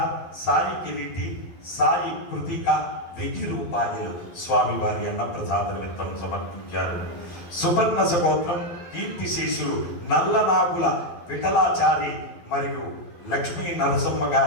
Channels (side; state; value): right; late; 12 ms